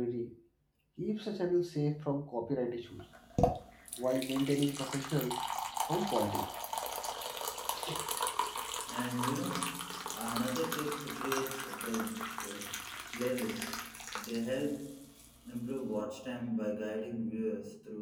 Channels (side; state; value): both; identical; correlation 1.00